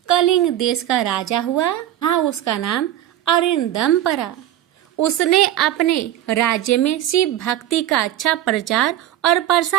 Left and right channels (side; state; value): left; quieter; 12.7 dB